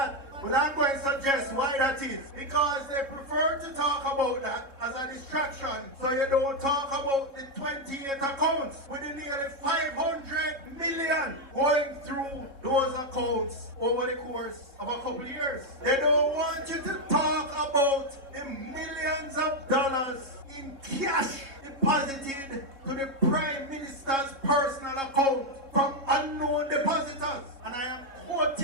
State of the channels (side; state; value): left; late; 3.7 ms